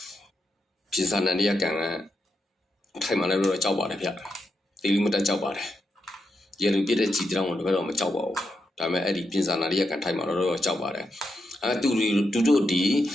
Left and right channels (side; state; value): both; normal; correlation 0.85